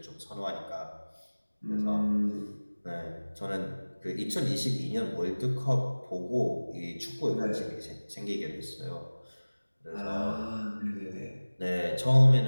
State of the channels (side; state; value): both; inverted; correlation -1.00